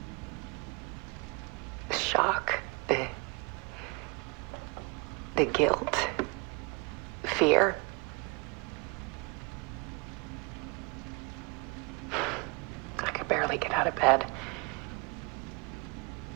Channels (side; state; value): left; quieter; 29.8 dB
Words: the shock, the guilt, fear. I could barely get out of bed.